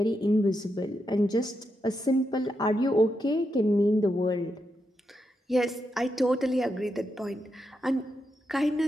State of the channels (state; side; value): normal; both; correlation 0.84